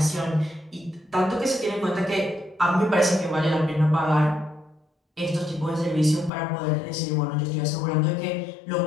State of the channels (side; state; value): right; drops out; at 6.3 s